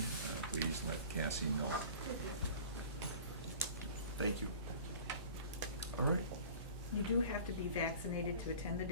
please let Cassie know. Thank you. All right. You do have to be vaccinated to attend the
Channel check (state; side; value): inverted; both; correlation -0.43